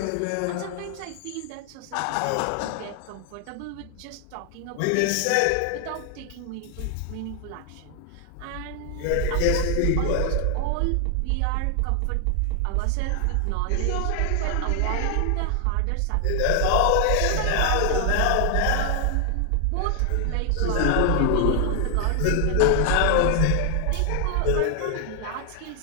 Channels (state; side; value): different; both; correlation 0.00